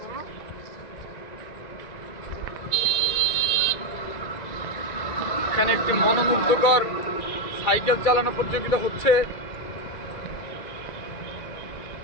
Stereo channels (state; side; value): late; right; 2.4 ms